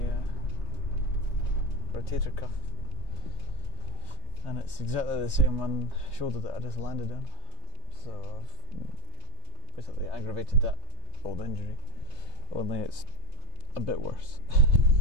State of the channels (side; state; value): left; late; 3.2 ms